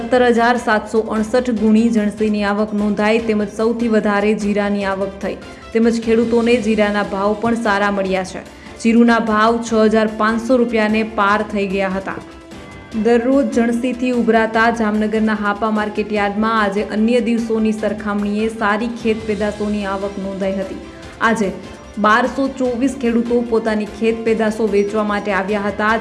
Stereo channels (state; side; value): identical; both; correlation 1.00